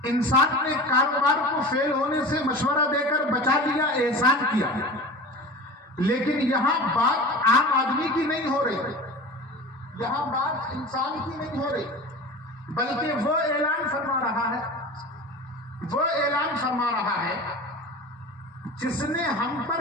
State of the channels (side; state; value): both; normal; correlation 0.34